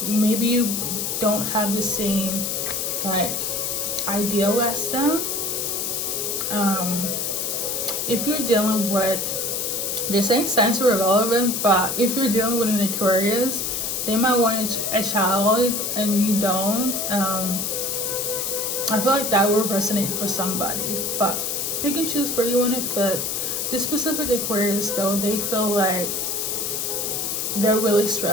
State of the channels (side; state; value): left; noise; hiss, 1 dB below the sound